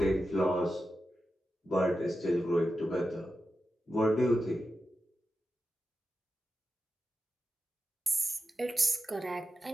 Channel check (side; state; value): both; normal; correlation 0.91